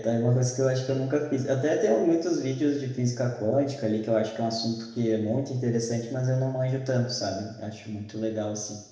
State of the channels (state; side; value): identical; both; correlation 1.00